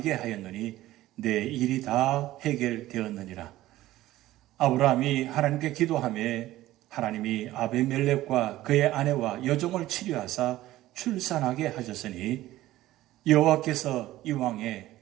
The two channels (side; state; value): left; quieter; 15.6 dB